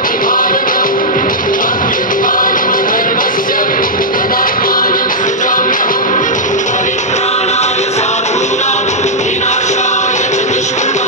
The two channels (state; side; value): normal; both; correlation -0.07